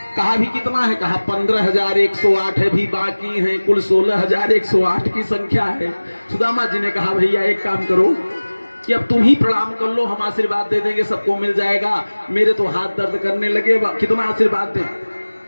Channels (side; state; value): both; inverted; correlation -1.00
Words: कहा भी कितना है? कहा 15108 है, भी बाकी है, कुल 16108 की संख्या है। सुदामा जी ने कहा भैया एक काम करो कि अब तुम ही प्रणाम कर लो, हम आशीर्वाद दे देंगे, सबको मिल जाएगा। मेरे तो हाथ दर्द करने लगे, कितना आशीर्वाद दें?